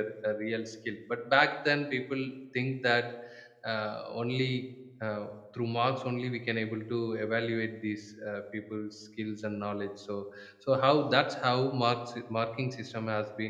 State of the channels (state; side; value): identical; both; correlation 1.00